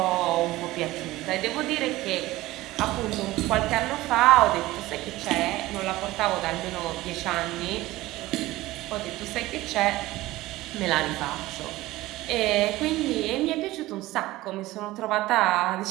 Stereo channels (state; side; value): quieter; left; 17.8 dB